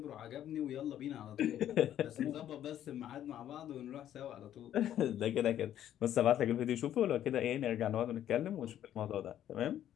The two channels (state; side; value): quieter; right; 11.2 dB